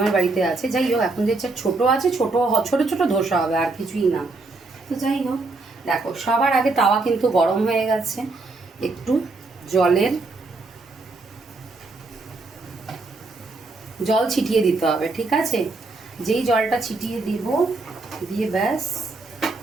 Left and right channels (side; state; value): left; quieter; 3.5 dB